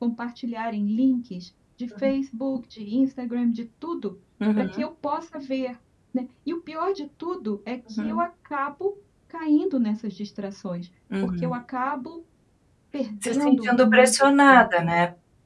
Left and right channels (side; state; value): both; identical; correlation 1.00